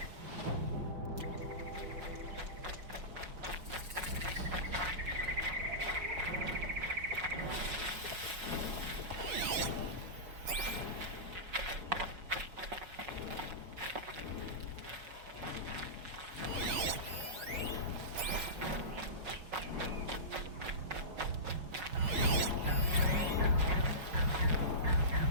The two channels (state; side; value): late; left; 5.4 ms